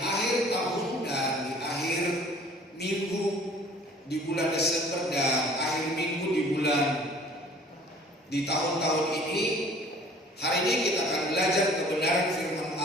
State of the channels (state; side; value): normal; both; correlation 0.51